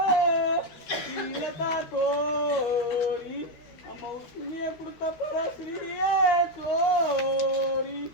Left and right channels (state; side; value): late; right; 13 ms